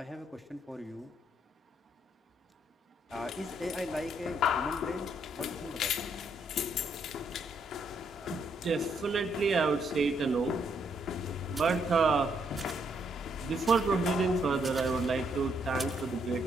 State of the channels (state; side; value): normal; both; correlation 0.73